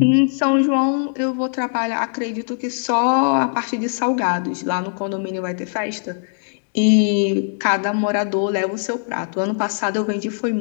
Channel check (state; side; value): silent; right; digital silence